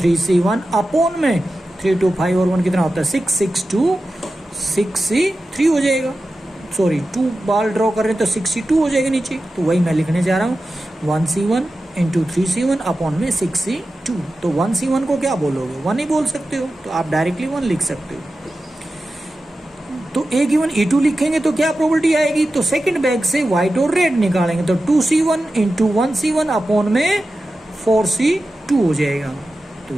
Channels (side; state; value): both; normal; correlation 0.93